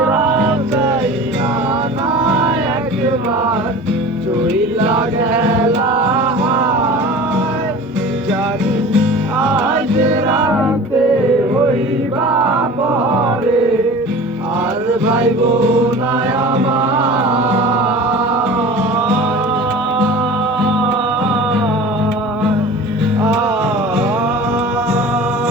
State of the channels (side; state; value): both; normal; correlation 0.39